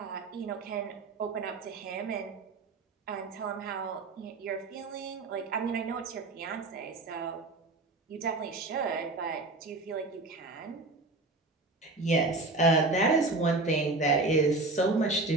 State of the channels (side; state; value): left; quieter; 3.3 dB